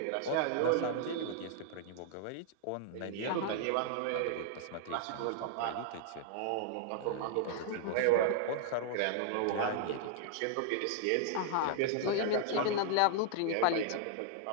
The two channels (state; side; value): different; both; correlation -0.01